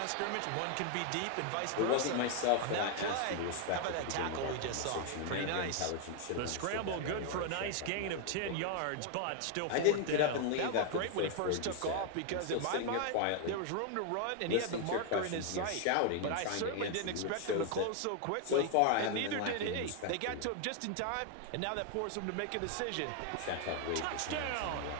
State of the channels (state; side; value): different; both; correlation 0.00